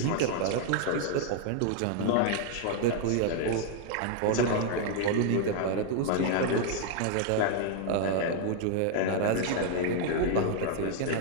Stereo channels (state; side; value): different; both; correlation 0.00